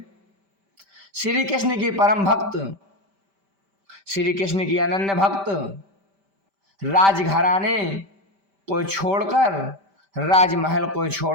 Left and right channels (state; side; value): late; left; 5.1 ms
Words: श्री कृष्ण की परम भक्त, श्री कृष्ण की अनन्य भक्त, राजघराने को छोड़कर, राजमहल को